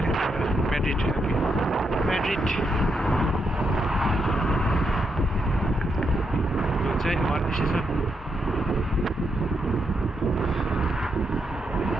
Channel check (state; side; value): normal; both; correlation 0.81